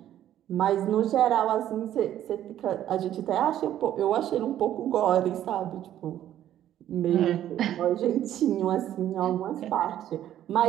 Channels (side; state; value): left; quieter; 11.7 dB